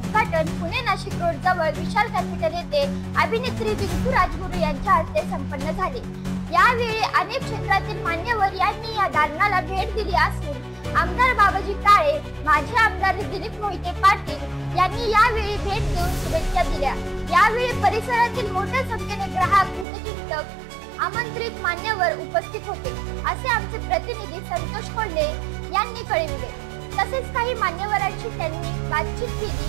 पुणे नाशिक रोड जवळ विशाल कॅपिटल येथे अभिनेत्री रिंकू राजगुरू यांच्या हस्ते संपन्न झाले। यावेळी अनेक क्षेत्रातील मान्यवर यांनी या दालनाला भेट दिली असून आमदार बाबाजी काळे, माजी आमदार दिलीप मोहिते पाटील यांनी यावेळी भेट देऊन शुभेच्छा दिल्या। यावेळी परिसरातील मोठ्या संख्येने ग्राहक, हितचिंतक, आमंत्रित मान्यवर उपस्थित होते असे आमचे प्रतिनिधी संतोष कोल्हे यांनी कळविले। तसेच काही मान्यवरांशी त्यांनी बातचीत केली।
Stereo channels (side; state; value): left; drops out; at 19.9 s